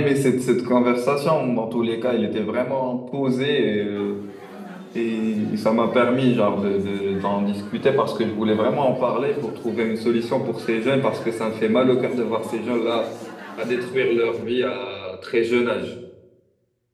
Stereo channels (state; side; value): identical; both; correlation 1.00